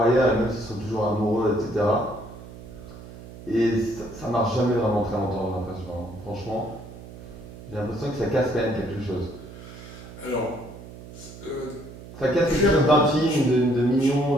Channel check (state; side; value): noise; right; hum, 16 dB below the sound